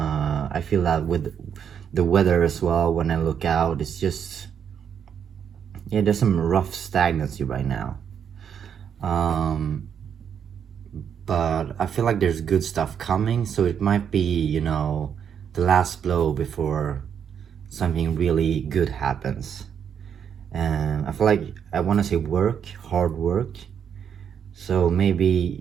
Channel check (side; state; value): left; quieter; 8.0 dB